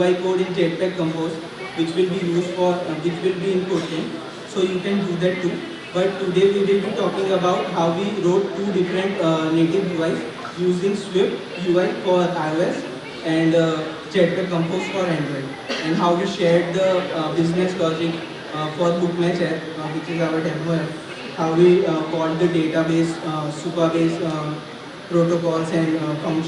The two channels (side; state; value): both; identical; correlation 1.00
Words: code in Jetpack Compose, which will be used for which will be in Kotlin, so you can do that too. But today we will be talking about how we wrote two different native UIs using Swift UI for iOS and Jetpack Compose for Android, and how we shared the business logic for Bookmatch app, which is our demo app, how we called the database, Supabase protocols and